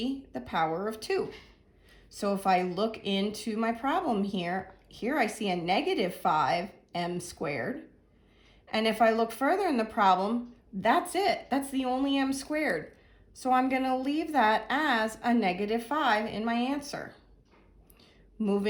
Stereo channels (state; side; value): identical; both; correlation 1.00